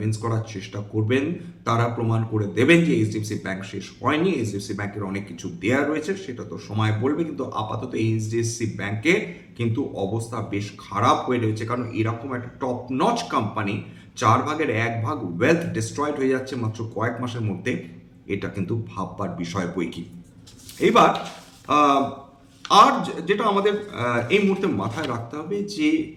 করার চেষ্টা করবেন, তারা প্রমাণ করে দেবেন যে এইচডিএফসি ব্যাংক শেষ হয়নি, এইচডিএফসি ব্যাংকের অনেক কিছু দেয়া রয়েছে, সেটা তো সময় বলবে। কিন্তু আপাতত এইচডিএফসি ব্যাংকে কিন্তু অবস্থা বেশ খারাপ হয়ে রয়েছে, কারণ এরকম একটা top notch company 1/4 wealth destroyed হয়ে যাচ্ছে মাত্র কয়েক মাসের মধ্যে, এটা কিন্তু ভাববার বিষয় বই কি। এবার আর যেটা আমাদের এই মুহূর্তে মাথায় রাখতে হবে যে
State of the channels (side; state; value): both; identical; correlation 1.00